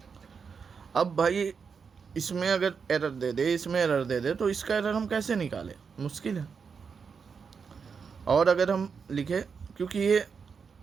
अब भाई इसमें अगर एरर दे दे, इसमें एरर दे दे, तो इसका एरर हम कैसे निकालें, मुश्किल है। और अगर हम लिखे, क्योंकि ये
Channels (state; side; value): quieter; left; 5.9 dB